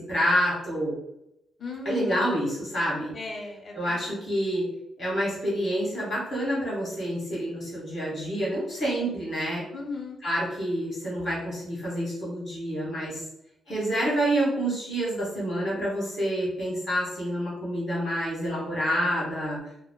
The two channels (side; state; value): both; normal; correlation 0.81